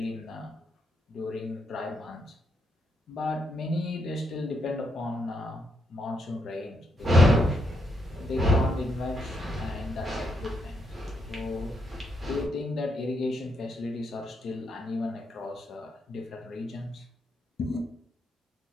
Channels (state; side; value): normal; both; correlation 0.79